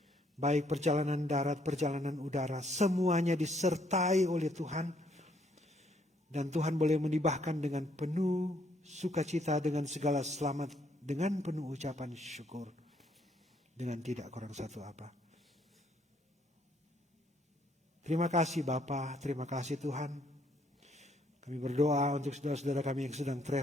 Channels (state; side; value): normal; both; correlation 0.69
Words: Baik perjalanan darat, perjalanan udara, semuanya disertai oleh Tuhan. Dan Tuhan boleh menibahkan dengan penuh sukacita, dengan segala selamat, dengan penuh ucapan syukur. Dengan tidak kurang satu apa. Terima kasih Bapa, terima kasih Tuhan. Kami berdoa untuk saudara-saudara kami yang sedang